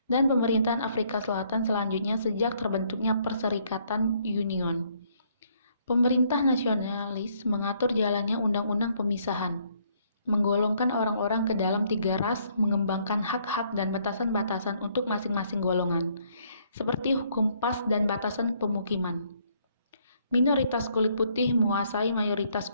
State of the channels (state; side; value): inverted; both; correlation -0.67